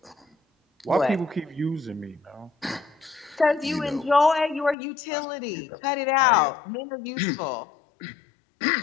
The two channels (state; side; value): drops out; right; at 4.8 s